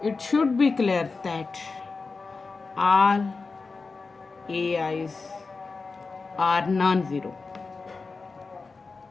it should be clear that all AIs are non-zero.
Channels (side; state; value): right; quieter; 4.2 dB